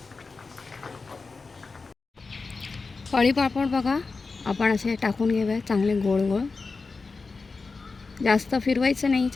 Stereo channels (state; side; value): quieter; right; 4.2 dB